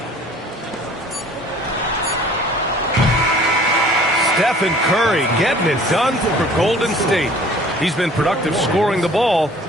Stephen Curry getting it done for Golden State. He's been productive scoring the ball.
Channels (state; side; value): normal; both; correlation 0.50